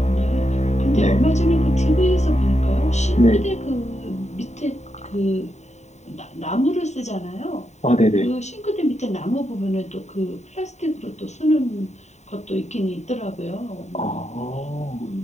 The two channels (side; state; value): right; late; 0.33 ms